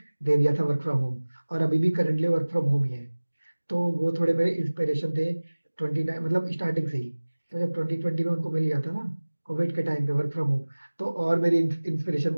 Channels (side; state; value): both; inverted; correlation -1.00